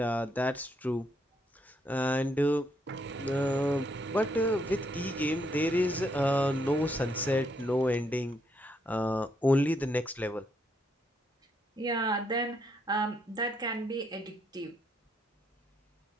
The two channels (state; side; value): normal; both; correlation 0.75